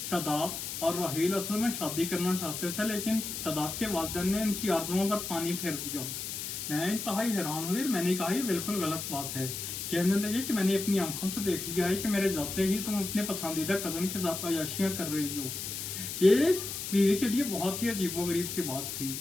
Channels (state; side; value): noise; left; hiss, 5 dB below the sound